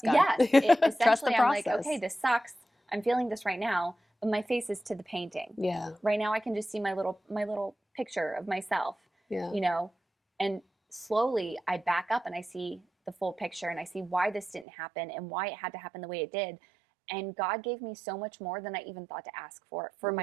God. yes, Trust the essentially I'm process. like, okay, this sucks. I'm feeling this right now, but my face is to the painting. Yeah. Right now I can just see my little picture of myself, Yeah. you know, and slowly I back up and I see the full picture and I see why this didn't happen and why it had to happen the way it did. And God gave me so much more than I even thought to ask for Wow.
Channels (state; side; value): drops out; left; at 14.7 s